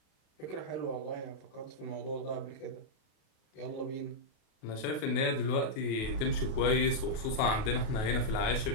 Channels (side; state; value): right; late; 37 ms